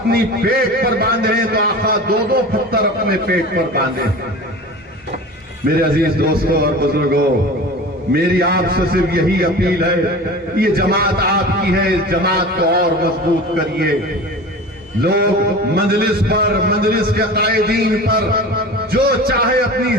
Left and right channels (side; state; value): both; normal; correlation 0.35